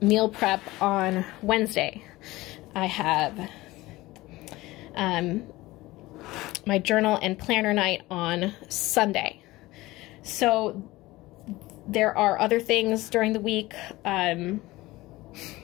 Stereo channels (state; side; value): quieter; right; 19.1 dB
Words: meal prep on Wednesday. I have my journal and planner night on Sunday. So there are other things during the week.